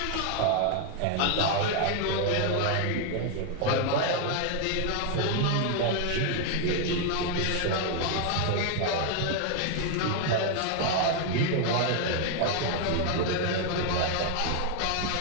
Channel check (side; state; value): both; different; correlation 0.00